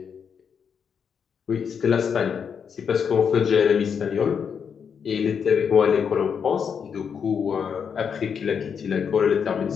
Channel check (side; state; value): right; quieter; 6.9 dB